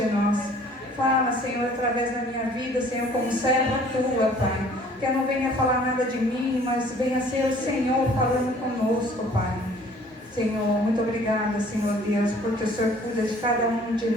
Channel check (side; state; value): both; normal; correlation 0.54